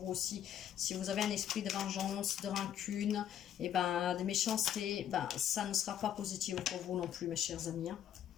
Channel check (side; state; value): right; quieter; 10.3 dB